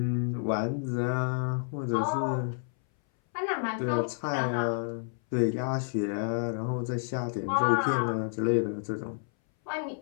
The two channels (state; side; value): silent; right; 58 dB below the other